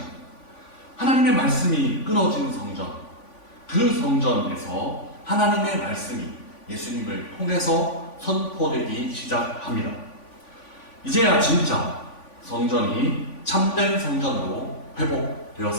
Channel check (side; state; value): right; late; 3.5 ms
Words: 하나님의 말씀이 끊어진 성전, 그 성전에서 하나님의 말씀이 예수님을 통해서 선포되기 시작합니다. 이제야 진짜 성전이 참된 성전으로